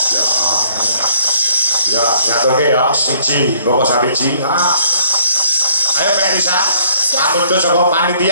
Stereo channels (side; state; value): both; inverted; correlation -0.64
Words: Ya, nyaturke ya siji, mboko sabiji. Ayo Mbak Elisa. Amundur saka